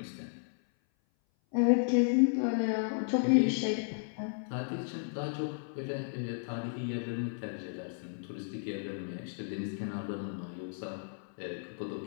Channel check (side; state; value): right; silent; 55 dB below the other